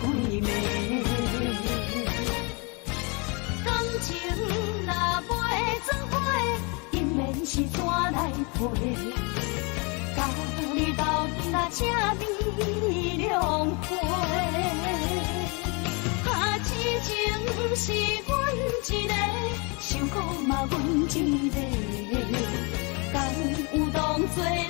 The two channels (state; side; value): quieter; right; 31.2 dB